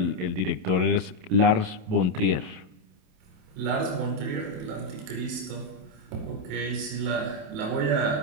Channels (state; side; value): late; left; 27 ms